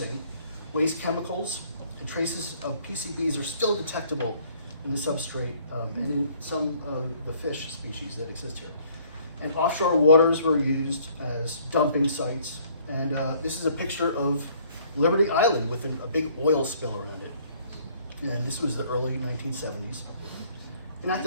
waste chemicals, and traces of PCBs are still detectable in the substrate and in some of the fish species that exist here. And offshore waters were used as dumping sites. And this is a picture of Liberty Island with a big oil spill around it. And this was the early 1970s. And at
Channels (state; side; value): inverted; both; correlation -0.60